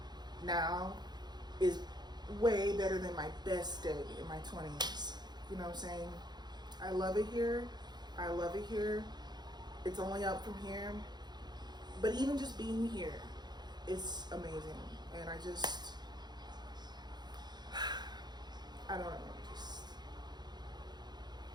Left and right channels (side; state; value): left; late; 0.21 ms